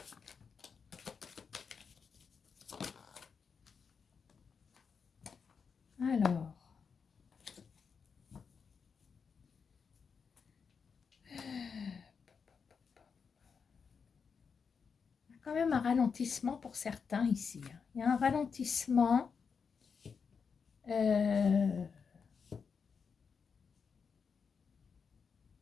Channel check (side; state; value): right; quieter; 5.9 dB